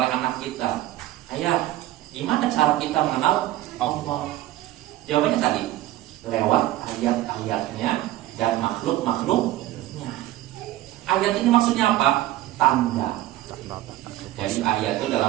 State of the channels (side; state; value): left; quieter; 15.1 dB